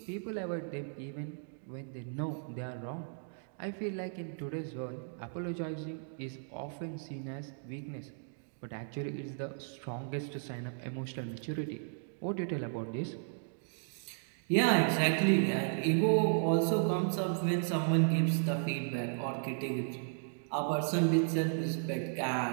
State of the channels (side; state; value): left; silent; digital silence